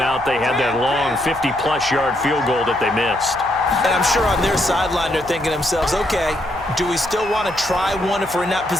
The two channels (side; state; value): right; noise; hum, 19 dB below the sound